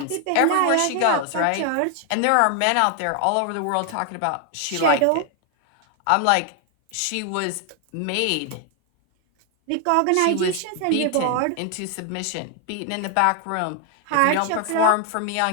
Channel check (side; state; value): both; different; correlation 0.00